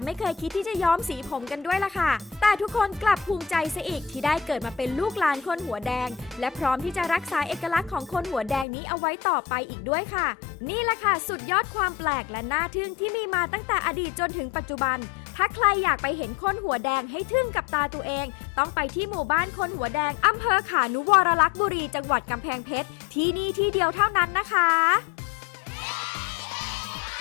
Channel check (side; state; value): right; drops out; at 8.7 s